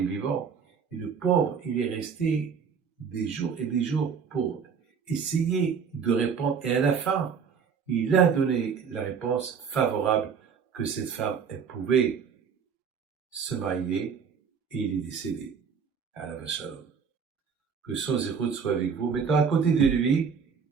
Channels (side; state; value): left; quieter; 6.4 dB